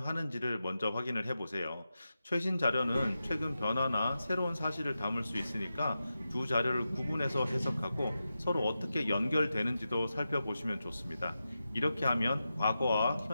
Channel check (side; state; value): both; inverted; correlation -0.91